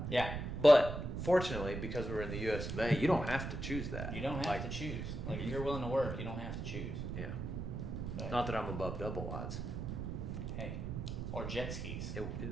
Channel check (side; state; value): right; noise; rumble, 4 dB below the sound